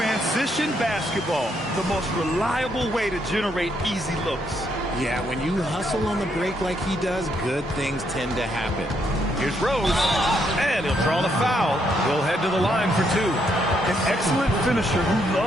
basketball, the most reliable way to generate easy looks. Yeah, when you hustle on the break like he does, good things tend to happen. Here's Rose, and he'll draw the foul. We'll head to the line for 2. An excellent finisher who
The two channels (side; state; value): both; normal; correlation 0.75